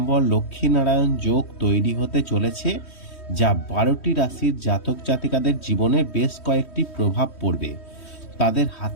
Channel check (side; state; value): right; late; 3.1 ms